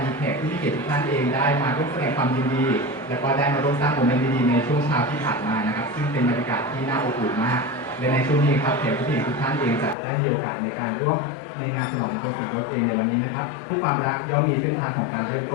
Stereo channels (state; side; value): drops out; right; at 10.0 s